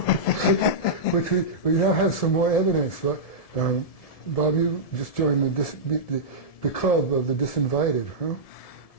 which we now have some more evidence. But Bob, you just joined the club of the disinvited, huh?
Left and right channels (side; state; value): right; late; 1.7 ms